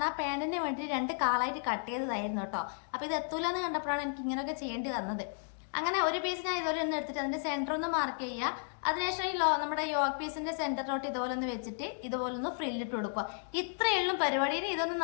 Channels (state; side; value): silent; right; digital silence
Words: ആ പാന്റിന് വേണ്ടി 2 കാലായിട്ട് കട്ട് ചെയ്തതായിരുന്നു കേട്ടോ. അപ്പൊ ഇത് എത്തൂലെന്ന് കണ്ടപ്പോഴാണ് എനിക്ക് ഇങ്ങനെയൊക്കെ ചെയ്യേണ്ടി വന്നത്. അങ്ങനെ ഒരു പീസ് ഞാൻ ഇതുപോലെ ഒന്ന് എടുത്തിട്ട് അതിന്റെ സെന്റർ ഒന്ന് മാർക്ക് ചെയ്യുക. അതിനുശേഷം നമ്മുടെ യോക്ക് പീസിന്റെ സെന്ററിലോട്ട് ഇതുപോലെ ഒന്ന് വെച്ചിട്ട് ഇതുപോലെ ഒന്ന് ഫ്രില്ലിട്ട് കൊടുക്കുക. ഇത്രയുള്ള പരിപാടിയിൽ ഇതൊന്നും